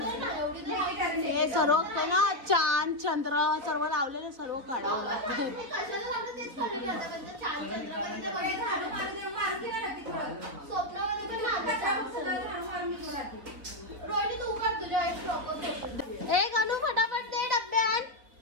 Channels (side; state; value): left; late; 3.9 ms